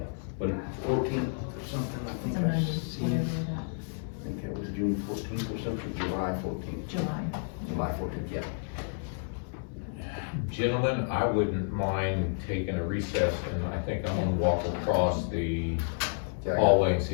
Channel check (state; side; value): silent; right; 57 dB below the other